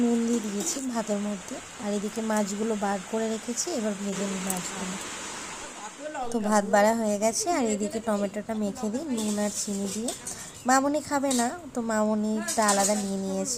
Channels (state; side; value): identical; both; correlation 1.00